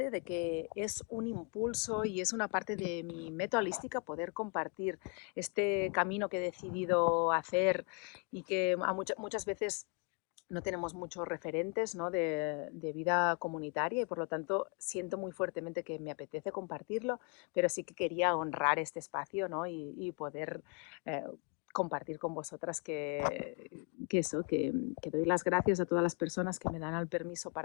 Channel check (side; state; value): right; quieter; 36.0 dB